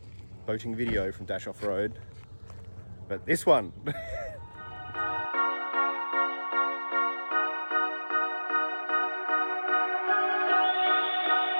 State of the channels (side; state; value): both; inverted; correlation -1.00